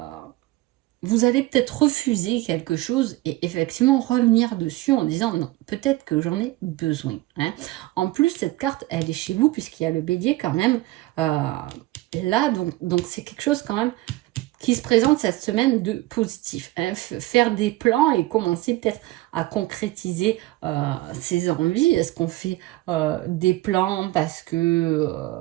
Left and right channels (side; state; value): left; quieter; 18.5 dB